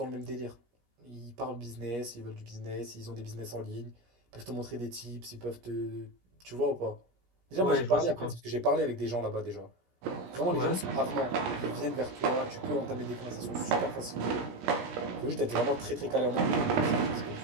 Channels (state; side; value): late; left; 17 ms